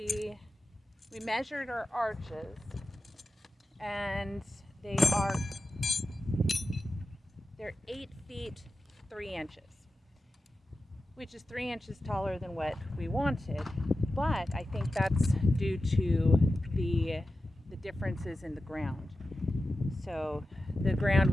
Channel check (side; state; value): both; normal; correlation 0.93